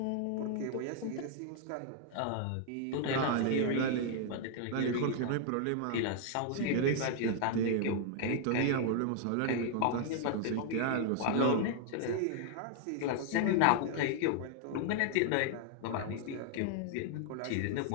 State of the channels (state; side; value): different; both; correlation 0.00